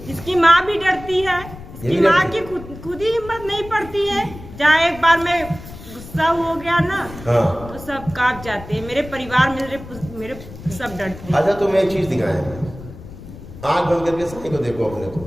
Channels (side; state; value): left; noise; rumble, 15 dB below the sound